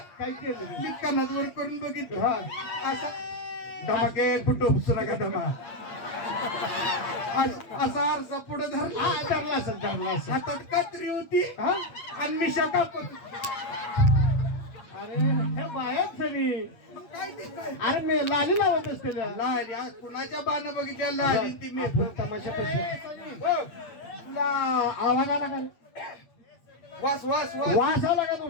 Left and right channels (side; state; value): right; late; 8.5 ms